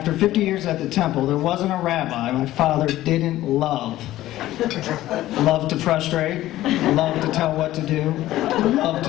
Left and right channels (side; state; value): right; quieter; 15.0 dB